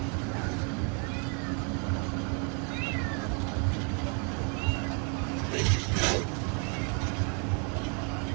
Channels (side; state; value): left; quieter; 38.0 dB